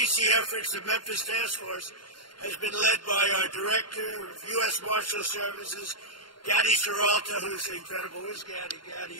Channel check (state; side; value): late; right; 0.72 ms